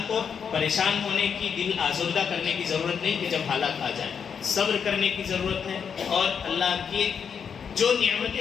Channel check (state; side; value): quieter; right; 6.9 dB